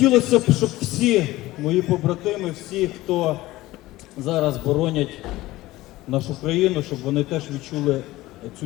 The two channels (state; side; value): quieter; right; 17.7 dB